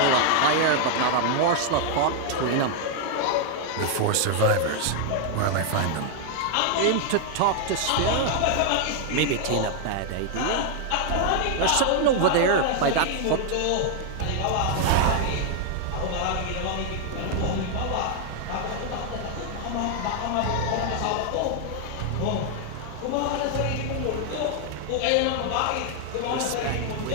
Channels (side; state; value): both; different; correlation 0.00